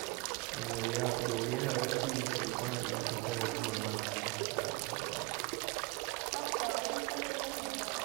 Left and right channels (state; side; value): quieter; left; 26.0 dB